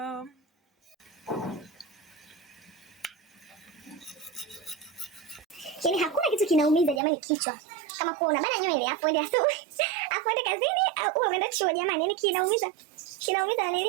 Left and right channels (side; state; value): left; drops out; at 7.0 s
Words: Yaani hakuna kitu kinaumiza jamani kichwa kama kuona bana nywele hapo ende asubuhi. Hapo ende kazini au umeenda chuo jamani, yaani kinaumiza